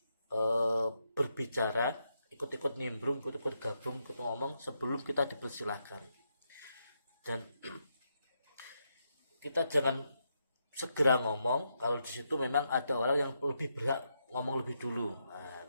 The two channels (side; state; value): both; inverted; correlation -0.81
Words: berbicara, ikut-ikut nimbrung, ikut-ikut gabung, ikut ngomong sebelum kita dipersilakan. Dan kita jangan segera ngomong kalau di situ memang ada orang yang lebih berhak ngomong lebih dulu. Nah,